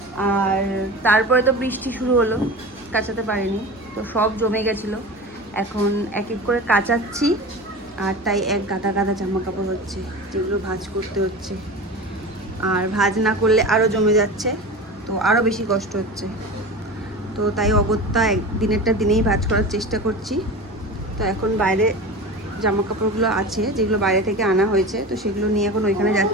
আর তারপরে তো বৃষ্টি শুরু হলো, কাচাতে পারিনি, তো সব জমে গেছিলো। এখন এক এক করে কাচাচ্ছি, আর তাই এক গাদা গাদা জামা কাপড় হচ্ছে, যেগুলো ভাঁজ করতে হচ্ছে। আর ভাঁজ না করলে আরও জমে যাচ্ছে, তো আরও বেশি কষ্ট হচ্ছে। তো তাই অগত্যা দিনেরটা দিনেই ভাঁজ করার চেষ্টা করছি। তো এখন বাইরে জামা কাপড়গুলো আছে, যেগুলো বাইরে থেকে আনা হয়েছে, তো সেগুলো নিয়ে এখন ওইখানে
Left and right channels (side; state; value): both; normal; correlation 0.31